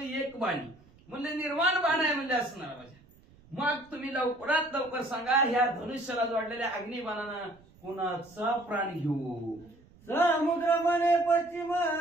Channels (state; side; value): noise; right; rumble, 27 dB below the sound